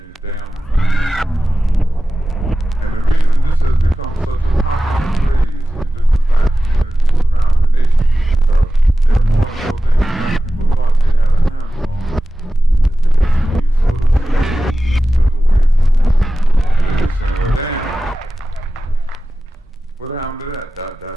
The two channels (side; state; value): both; normal; correlation 0.94